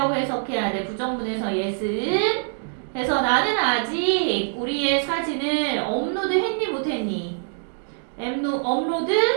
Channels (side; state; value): left; silent; digital silence